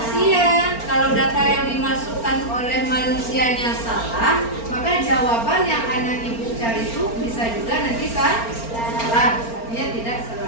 Kalau data yang dimasukkan oleh manusianya salah, maka jawaban yang anak ibu cari itu bisa juga nanti salah. Artinya tidak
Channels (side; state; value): right; late; 4.4 ms